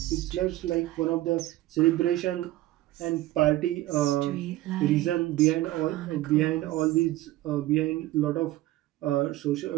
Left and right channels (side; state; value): left; quieter; 16.4 dB